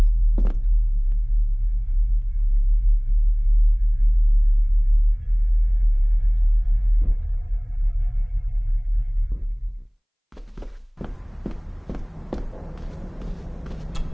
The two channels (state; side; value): identical; both; correlation 1.00